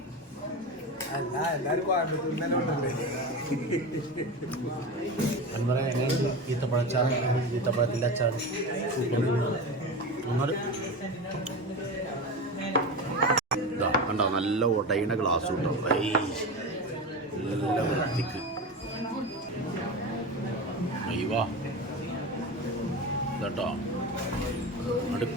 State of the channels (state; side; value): normal; both; correlation 0.25